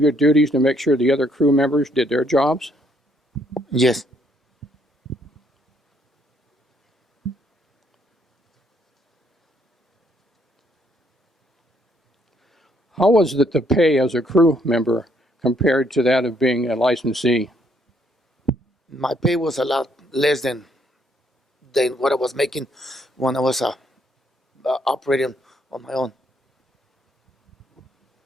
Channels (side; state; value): both; normal; correlation 0.69